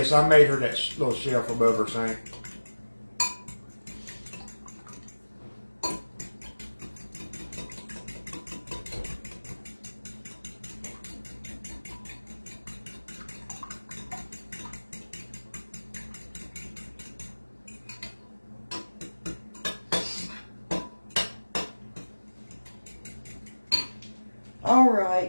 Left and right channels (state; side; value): inverted; both; correlation -1.00